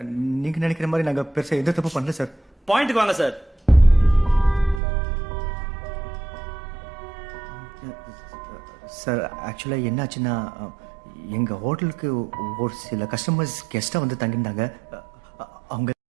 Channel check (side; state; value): left; drops out; at 4.8 s